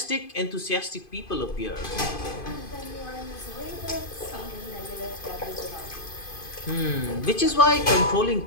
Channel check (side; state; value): right; late; 2.5 ms